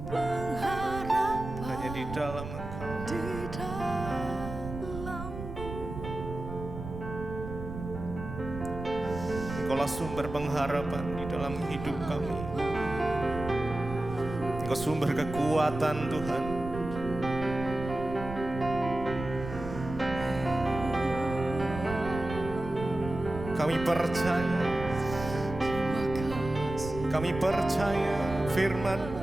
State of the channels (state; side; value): noise; right; rumble, 9 dB below the sound